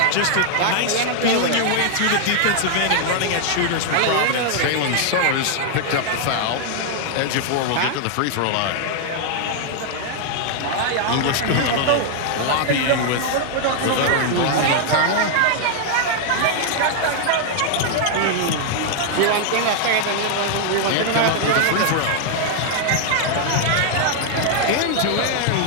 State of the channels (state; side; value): different; both; correlation 0.00